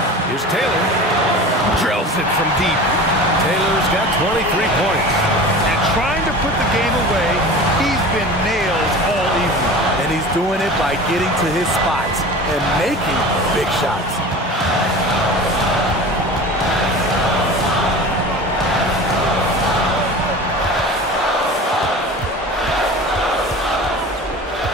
here's Taylor. Drills it from deep. Taylor's got 23 points. And trying to put the game away, he's been nailed all evening. And he's doing it by getting to his spots and making big shots.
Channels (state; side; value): normal; both; correlation 0.36